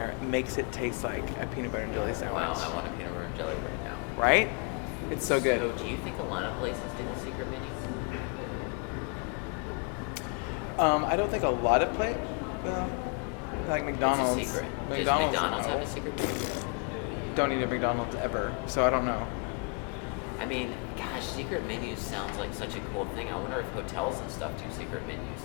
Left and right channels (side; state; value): right; quieter; 33.3 dB